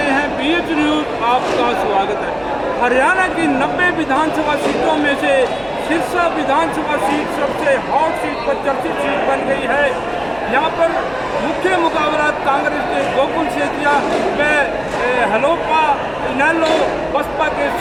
हैं BH न्यूज़। आपका स्वागत है। हरियाणा की 90 विधानसभा सीटों में से सिरसा विधानसभा सीट सबसे हॉट सीट पर चर्चित सीट बन गई है। यहाँ पर मुख्य मुकाबला कांग्रेस के गोकुल सेतिया व हलोपा इनेलो बसपा के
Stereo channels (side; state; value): left; noise; hum, 23 dB below the sound